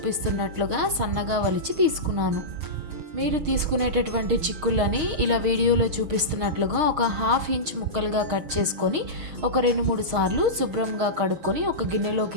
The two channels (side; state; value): left; late; 6.5 ms